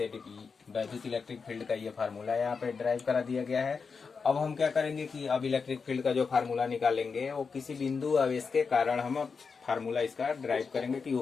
वैद्युत इलेक्ट्रिक फील्ड का ये फार्मूला यहाँ पे ड्राइव करा दिया गया है। अब हम क्या करेंगे कि अब इलेक्ट्रिक फील्ड का जो फार्मूला निकालेंगे वो किसी बिंदु आवेश के कारण हम फार्मूला इसका ड्राइव करेंगे कि वो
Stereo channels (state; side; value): quieter; right; 5.2 dB